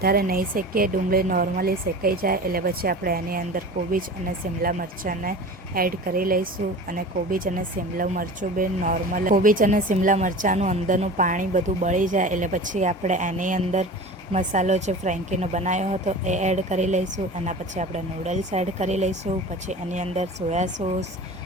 નહીં શેકીએ, ડુંગળી નોર્મલી શેકાઈ જાય એટલે પછી આપણે એની અંદર કોબીજ અને શિમલા મરચાંને એડ કરી લઈશું. અને કોબીજ અને શિમલા મરચું બી નોર્મલ, કોબીજ અને શિમલા મરચાંનું અંદરનું પાણી બધું બળી જાય એટલે પછી આપણે એની અંદર મસાલો જે ફ્રેન્કીનો બનાવ્યો હતો એ એડ કરી લઈશું. એના પછી આપણે નૂડલ્સ એડ કરી લઈશું. પછી એની અંદર soya sauce,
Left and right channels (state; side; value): normal; both; correlation 0.36